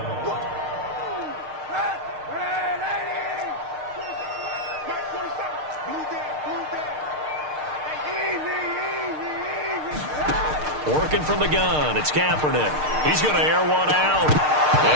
Working from the gun, it's Kaepernick. He's going to air one out.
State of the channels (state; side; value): late; left; 6.6 ms